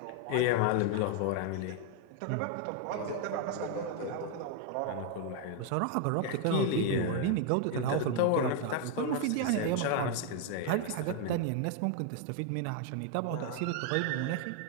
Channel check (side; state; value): both; different; correlation 0.00